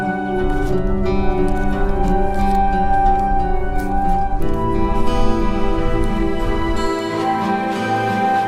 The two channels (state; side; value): identical; both; correlation 1.00